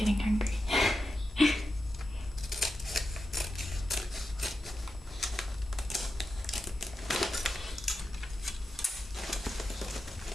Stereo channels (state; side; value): normal; both; correlation 0.89